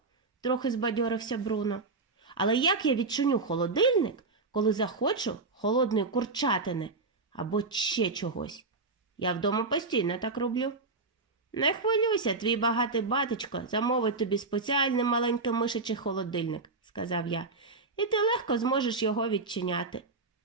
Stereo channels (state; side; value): quieter; left; 3.8 dB